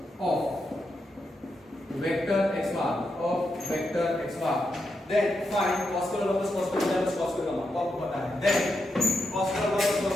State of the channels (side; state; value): both; normal; correlation 0.85